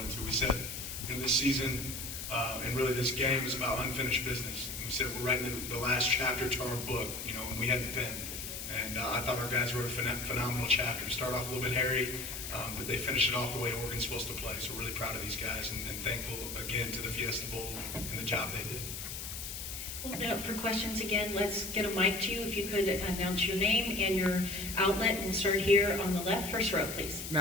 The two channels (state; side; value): noise; left; hiss, 7 dB below the sound